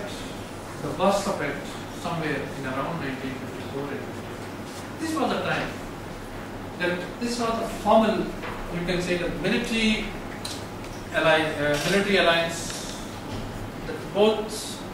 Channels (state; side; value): identical; both; correlation 1.00